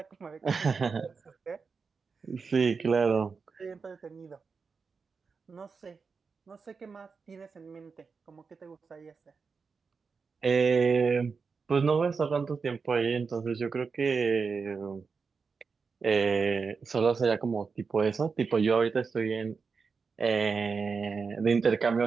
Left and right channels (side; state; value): left; quieter; 5.1 dB